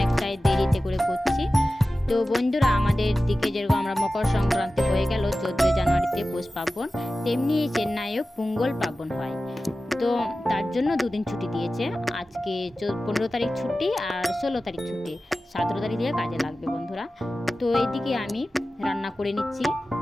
দেরিতে করে করছি। তো বন্ধুরা, আমাদের দিকে যেরকম আমরা মকর সংক্রান্তি হয়ে গেল 14 জানুয়ারিতে পৌষ পার্বণ, তেমনি চেন্নাইও পোঙ্গল পার্বণ হয়। তো তার জন্য দুদিন ছুটি দিয়েছে। আজকে 15 তারিখ ছুটি আর 16 তারিখ ছুটি, 17 তারিখ দিয়ে কাজে লাগবে বন্ধুরা। তো এইদিকে আমি রান্না করে নিচ্ছি,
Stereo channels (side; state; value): both; normal; correlation 0.95